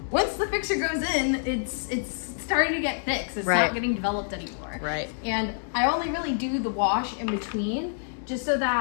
once the fixture goes in, it's starting to get fixed. It's not getting developed anymore. Right. And I only really do the wash in between, just so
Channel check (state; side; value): silent; right; digital silence